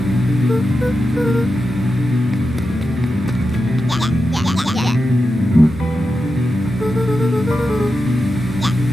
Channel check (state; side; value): normal; both; correlation 0.89